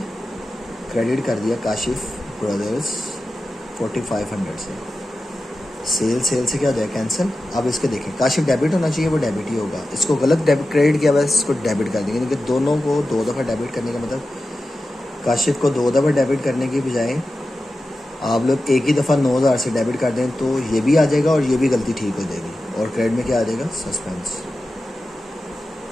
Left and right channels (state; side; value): normal; both; correlation 0.93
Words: क्रेडिट कर दिया काशिफ ब्रदर्स 4,500 से। सेल से क्या हो जाए, कैंसिल। अब इसके देखें, काशिफ डेबिट होना चाहिए, वो डेबिट ही होगा। इसको गलत डेबिट क्रेडिट किया हुआ है, इसको डेबिट कर देंगे, क्योंकि दोनों को 2 दफ़ा डेबिट करने का मतलब काशिफ को 2 दफ़ा डेबिट करने की बजाय आप लोग एक ही दफ़ा 9,000 से डेबिट कर दें तो ये भी आ जाएगा और ये भी गलती ठीक हो जाएगी। और क्रेडिट में क्या आ जाएगा? Suspense